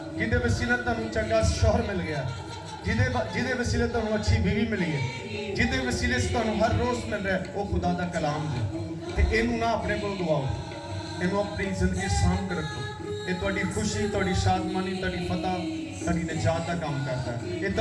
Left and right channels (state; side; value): identical; both; correlation 1.00